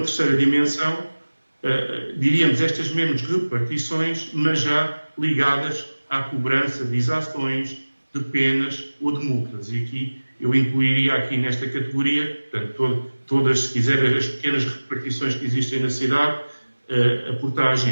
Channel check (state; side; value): inverted; both; correlation -1.00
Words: dimensão, diríamos estas mesmas repartições, mas já ligadas à cobrança de exações, de penas ou de multas. E aqui eu incluiria aqui nesta categoria, portanto, todas, se quiser, as pequenas repartições que existem na cidade, a